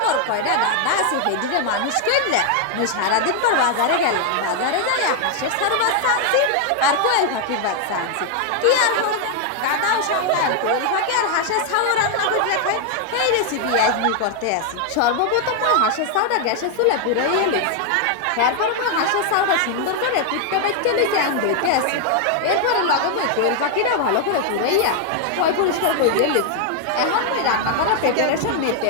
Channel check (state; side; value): different; both; correlation 0.00